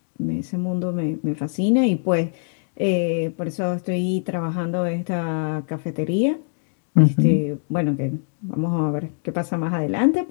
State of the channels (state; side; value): silent; right; digital silence